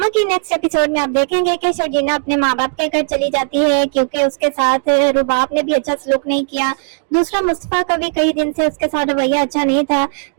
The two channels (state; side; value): silent; left; digital silence